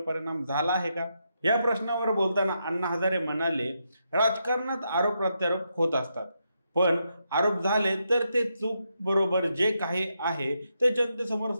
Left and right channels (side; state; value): both; inverted; correlation -0.82